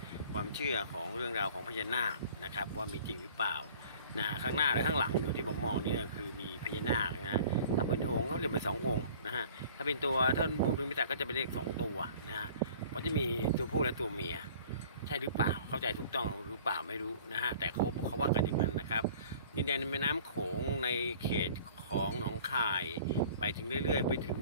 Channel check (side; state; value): both; inverted; correlation -0.49